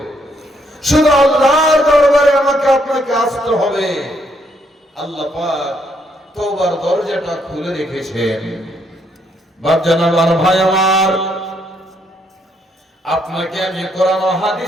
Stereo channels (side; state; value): both; normal; correlation 0.72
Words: শুধু আল্লাহর দরবারে আমাকে আপনাকে আসতে হবে। আল্লাহ পাক তওবার দরজাটা খুলে রেখেছেন। বাপজান আমার, ভাই আমার, আপনাকে আমি কোরআন ও